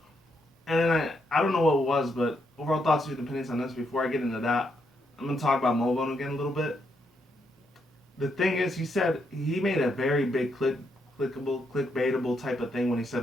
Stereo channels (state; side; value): normal; both; correlation 0.78